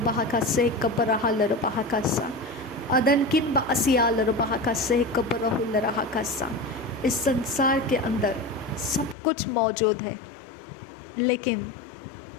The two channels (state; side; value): drops out; right; at 9.2 s